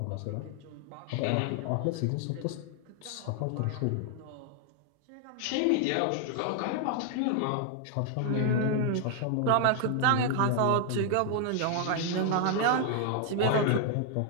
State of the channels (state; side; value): different; both; correlation 0.00